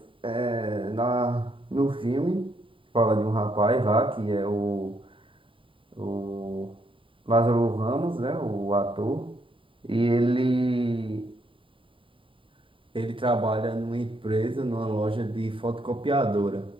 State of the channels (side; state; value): left; late; 0.25 ms